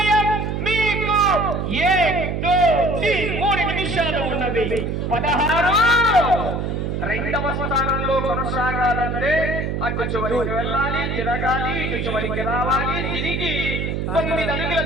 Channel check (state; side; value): noise; right; hum, 2 dB below the sound